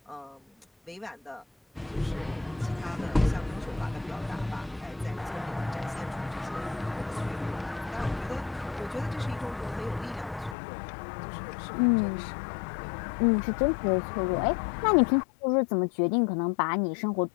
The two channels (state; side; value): drops out; right; at 10.6 s